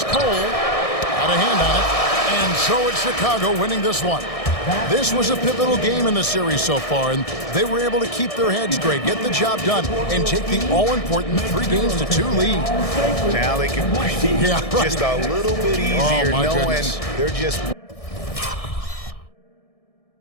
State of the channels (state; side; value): late; right; 1.6 ms